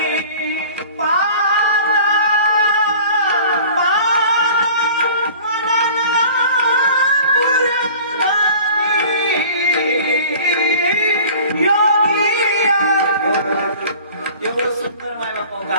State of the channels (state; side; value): inverted; both; correlation -0.44